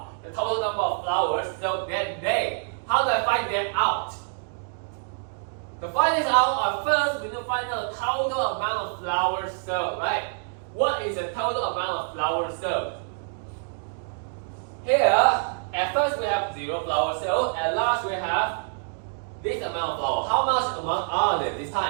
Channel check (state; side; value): silent; left; digital silence